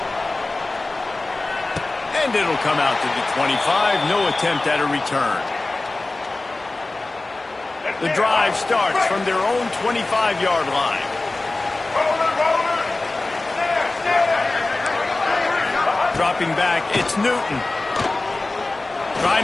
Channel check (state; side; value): quieter; right; 3.1 dB